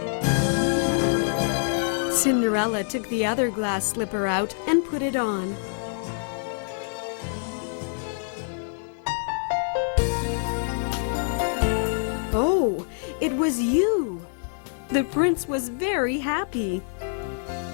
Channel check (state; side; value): silent; right; 57 dB below the other